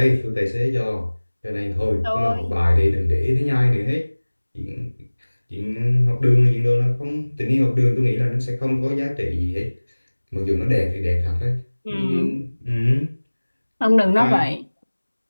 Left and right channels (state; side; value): inverted; both; correlation -1.00